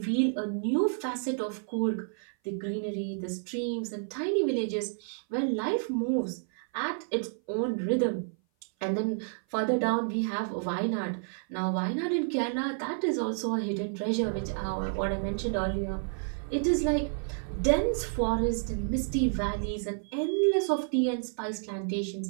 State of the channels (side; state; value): left; silent; 56 dB below the other